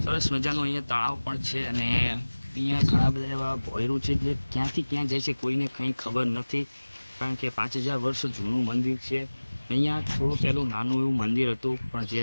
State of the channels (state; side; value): inverted; both; correlation -1.00